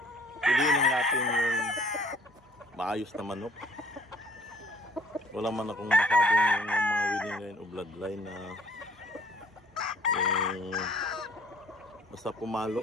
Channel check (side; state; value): both; normal; correlation 0.57